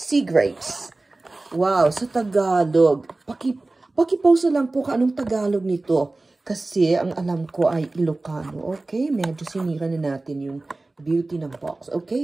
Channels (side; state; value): left; quieter; 3.1 dB